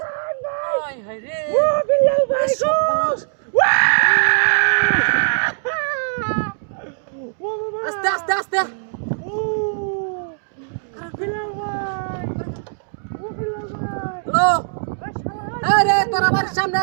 আস্তে আস্তে আস্তে হ্যালো আরে তোর আমার সামনে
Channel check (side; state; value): left; silent; digital silence